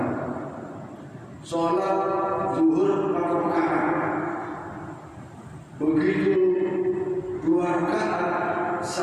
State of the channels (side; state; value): both; identical; correlation 1.00